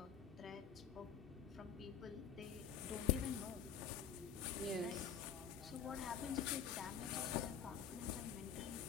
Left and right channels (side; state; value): right; quieter; 7.6 dB